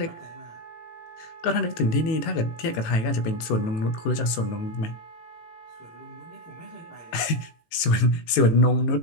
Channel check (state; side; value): late; right; 18 ms